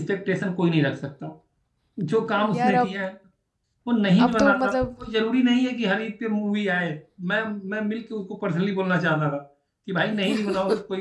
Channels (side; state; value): both; identical; correlation 1.00